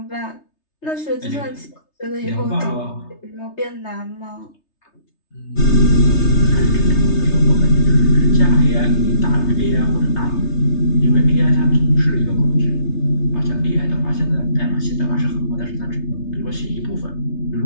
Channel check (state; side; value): late; right; 3.3 ms